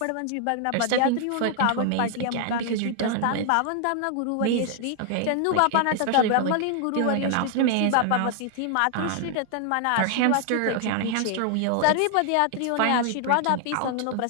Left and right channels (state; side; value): different; both; correlation 0.00